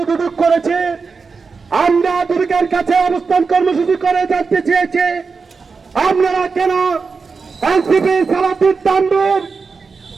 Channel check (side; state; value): left; quieter; 4.8 dB